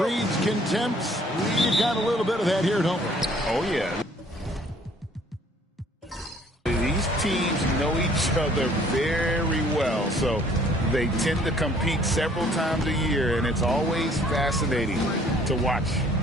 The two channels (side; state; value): both; normal; correlation 0.58